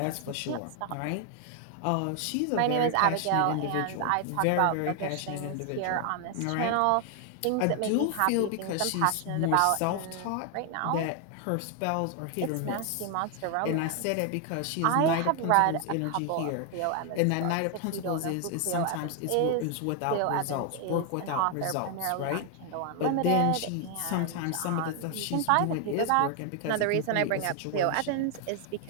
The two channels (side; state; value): both; different; correlation 0.00